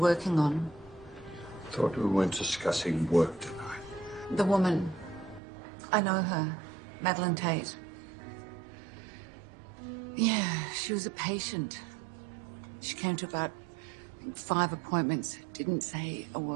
on, Thought we weren't discussing work tonight. the woman, I know her, Madeline Tate. Yeah, she was a patient. She came to about, I think, 5 appointments, didn't say a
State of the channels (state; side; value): drops out; left; at 5.4 s